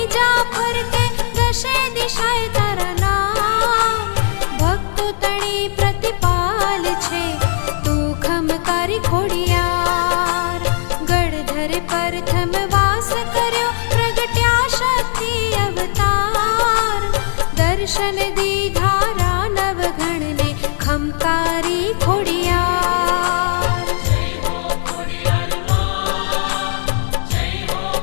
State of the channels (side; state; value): right; silent; 68 dB below the other